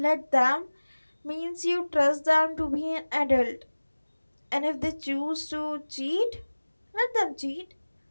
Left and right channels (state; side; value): inverted; both; correlation -1.00